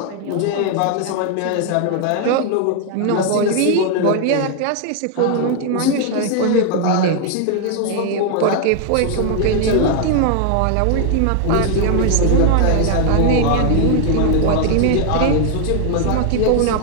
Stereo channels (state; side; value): different; both; correlation 0.00